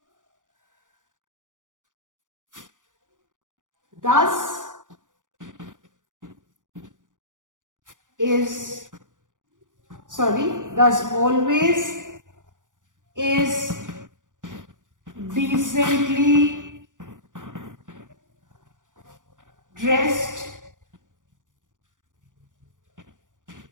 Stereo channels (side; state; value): left; late; 0.88 ms